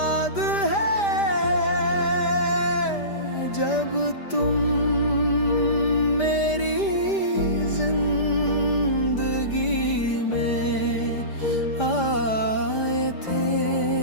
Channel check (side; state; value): right; late; 5.0 ms